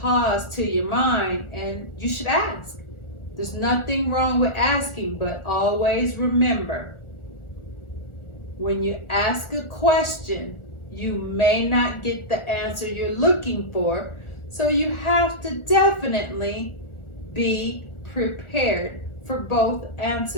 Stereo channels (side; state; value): right; late; 1.4 ms